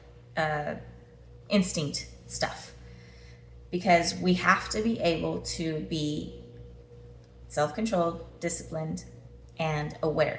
instinct stuff, because we have to be able to be self-controlled, disciplined, and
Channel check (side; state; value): both; identical; correlation 1.00